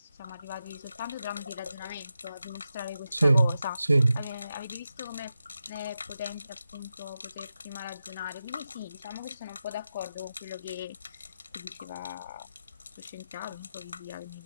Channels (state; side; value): inverted; both; correlation -0.90